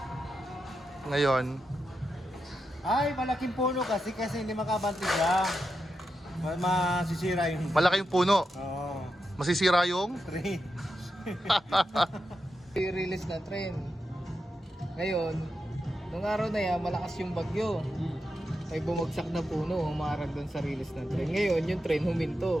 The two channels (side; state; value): both; normal; correlation 0.87